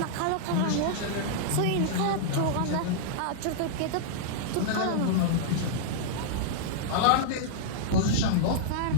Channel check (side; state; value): both; different; correlation -0.02